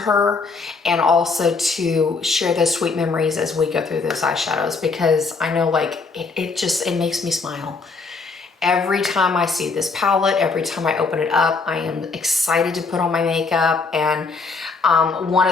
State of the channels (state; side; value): quieter; right; 4.4 dB